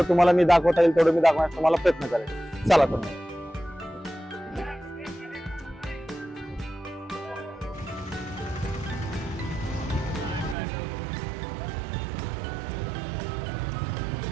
तुम्हाला मी दाखवता येईल तेवढं मी दाखवण्याचा तुम्हाला प्रयत्न करेन. चला तर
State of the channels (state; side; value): drops out; left; at 10.6 s